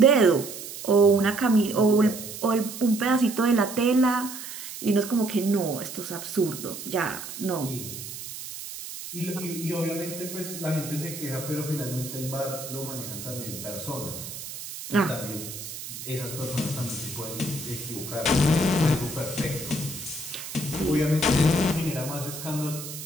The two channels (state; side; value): noise; right; hiss, 10 dB below the sound